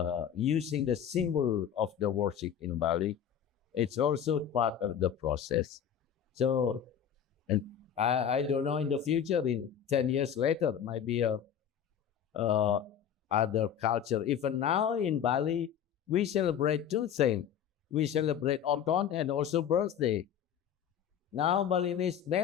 using the symbol of the worship in Bali. It's also part of the process. So, and I don't know in the future, in 10 years later, maybe other culture. Even now in Bali, we celebrate two things. We celebrate autumn and also birthday. Now Balinese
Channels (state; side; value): quieter; right; 8.8 dB